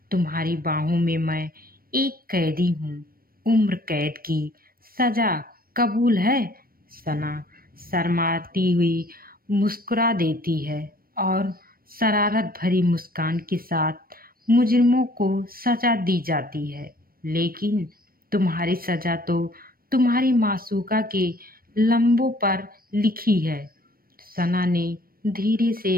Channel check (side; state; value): left; late; 0.43 ms